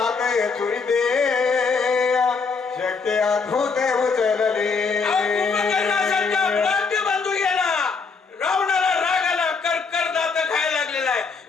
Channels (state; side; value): quieter; right; 4.9 dB